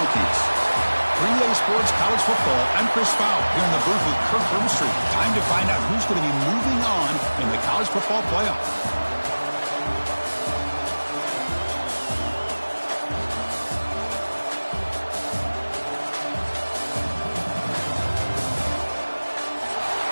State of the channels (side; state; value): both; inverted; correlation -1.00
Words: 3A Sports College Football, I'm Chris Fowler, here in the booth with Kirk Broomstreet. Time to find out who's going to be moving on in the college football playoff.